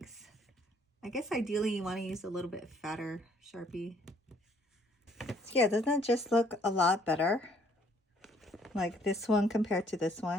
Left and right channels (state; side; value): normal; both; correlation 0.63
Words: I guess ideally you want to use a little bit fatter Sharpie. So yeah, doesn't it just look a lot better? Like this one compared to this